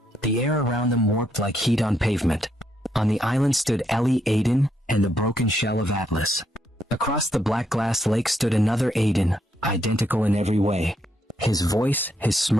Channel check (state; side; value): normal; both; correlation 0.77